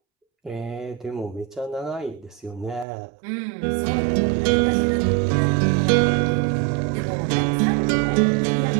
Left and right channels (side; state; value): left; drops out; at 2.9 s